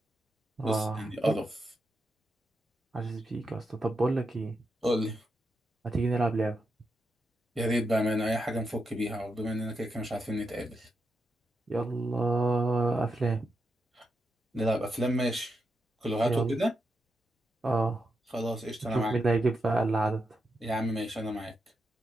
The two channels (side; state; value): both; normal; correlation 0.85